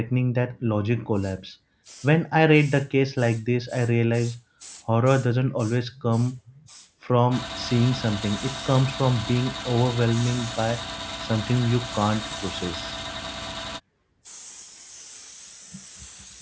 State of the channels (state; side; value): identical; both; correlation 1.00